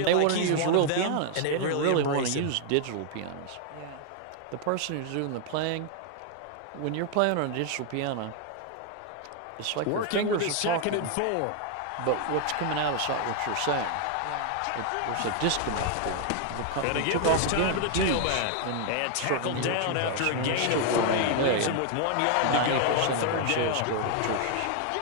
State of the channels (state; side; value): different; both; correlation 0.00